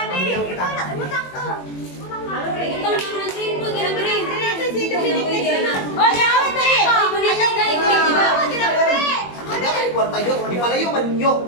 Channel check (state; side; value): late; right; 21 ms